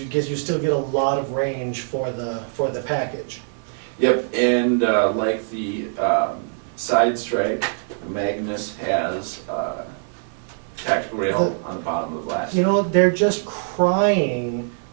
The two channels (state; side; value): silent; left; 56 dB below the other